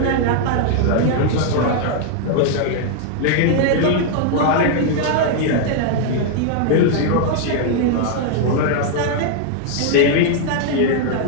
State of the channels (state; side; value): different; both; correlation 0.00